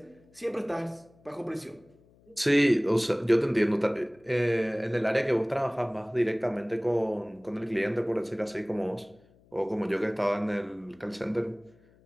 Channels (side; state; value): left; noise; hum, 30 dB below the sound